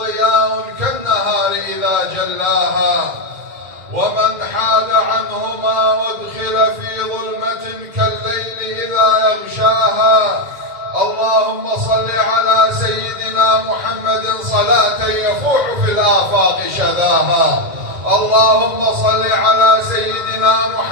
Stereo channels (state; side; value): late; left; 1.9 ms